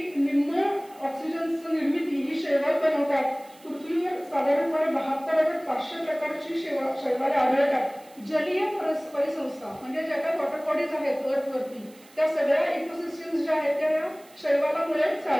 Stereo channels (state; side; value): noise; right; hiss, 26 dB below the sound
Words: निम्म ऑक्सिजनची निर्मिती ही शेवाळ बनवतात. पृथ्वीवर साधारणपणे 72,500 प्रकारची शैवाले आढळतात. जलीय परिसंस्था म्हणजे ज्या काही वॉटर बॉडीज आहेत अर्थवरती त्या सगळ्या इकोसिस्टम्स ज्या आहेत त्या या शैवालामुळे